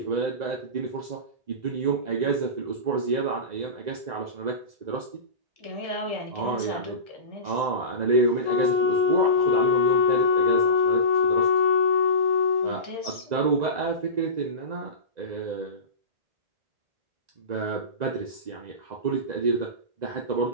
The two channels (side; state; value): left; late; 1.9 ms